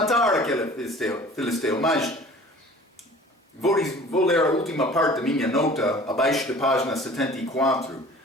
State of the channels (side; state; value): both; normal; correlation 0.46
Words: aquele filisteu. Mas vou ler a última parte da minha nota, abaixo da página 74.